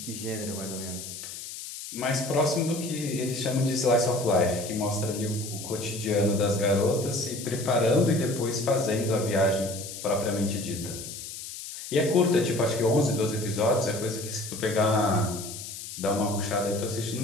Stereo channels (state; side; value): noise; left; hiss, 10 dB below the sound